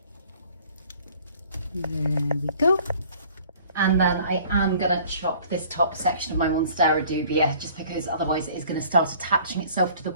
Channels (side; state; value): both; inverted; correlation -0.52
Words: There we go. And then I am going to chop this top section of my Monstera dubia, just because otherwise it is going to start attaching itself to the